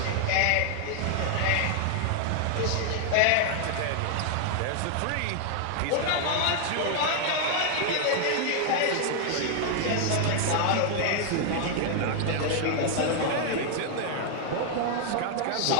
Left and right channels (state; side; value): different; both; correlation 0.00